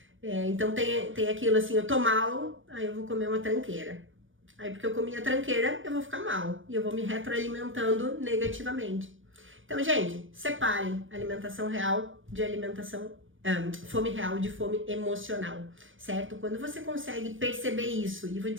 então tem aquilo assim, eu tô mal, aí eu vou comer uma tranqueira. Aí porque eu comi a tranqueira, eu vou ficar mal e eu vou me retroalimentando negativamente. Então, gente, separem alimentação real de fome real de fome emocional, certo? Quando você consegue perceber isso, e vou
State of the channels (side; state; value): left; late; 0.57 ms